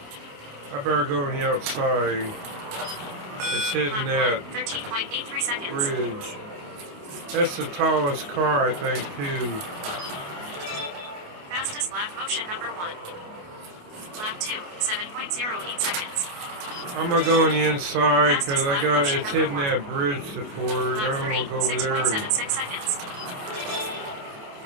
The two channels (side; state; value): left; late; 28 ms